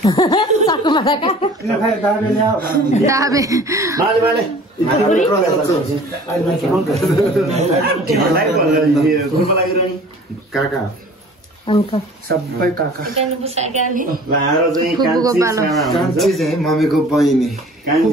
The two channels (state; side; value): normal; both; correlation 0.47